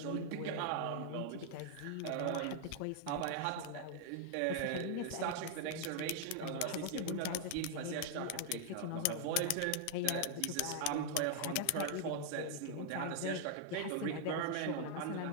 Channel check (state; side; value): different; both; correlation -0.01